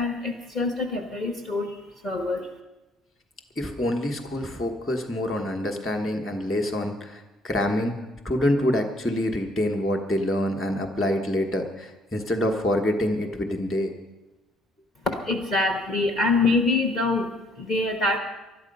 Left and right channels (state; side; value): normal; both; correlation 0.65